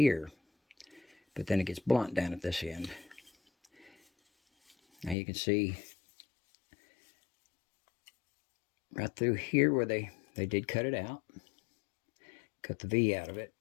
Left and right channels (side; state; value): right; drops out; at 5.2 s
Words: But then it gets blunt down at this end. Now you can see right through here where they did cut it out. Cut the V out of it.